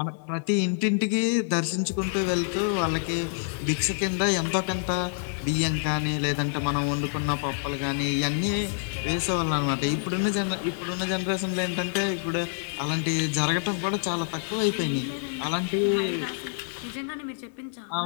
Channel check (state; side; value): silent; right; digital silence